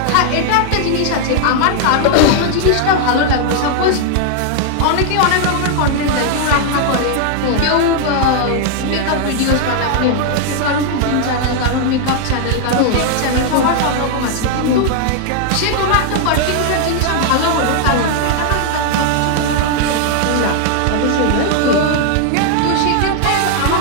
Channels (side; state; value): both; different; correlation 0.00